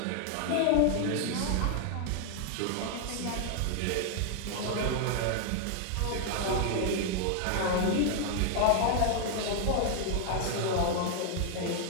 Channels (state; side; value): different; both; correlation 0.00